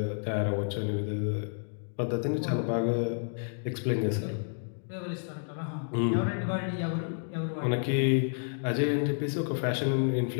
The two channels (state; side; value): silent; right; digital silence